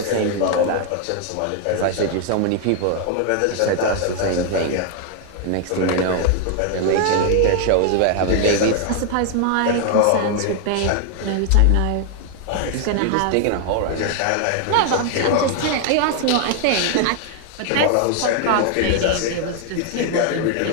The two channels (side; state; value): both; different; correlation 0.00